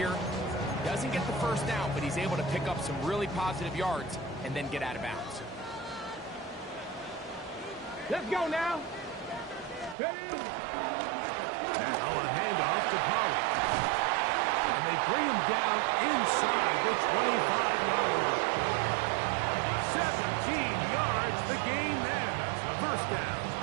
Doesn't get the first down, but he's able to pick up some really positive yards and then get out of bounds. Let's go now. Ready? Now a handoff to Pollard. And they bring him down inside the 25-yard line. 17 yards, the gain there. First down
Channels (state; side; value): drops out; left; at 10.0 s